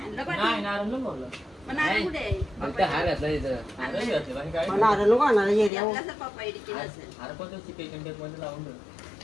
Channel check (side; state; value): right; drops out; at 5.7 s